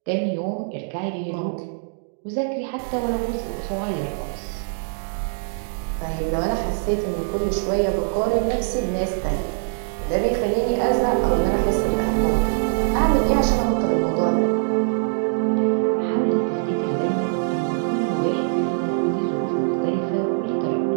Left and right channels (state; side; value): silent; left; digital silence